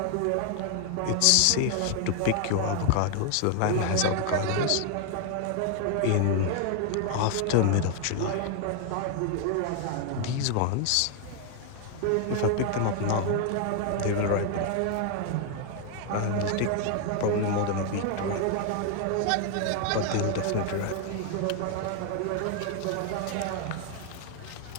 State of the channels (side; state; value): both; different; correlation 0.00